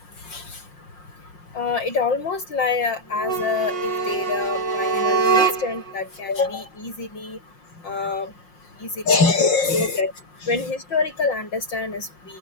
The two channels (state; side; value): late; right; 5.6 ms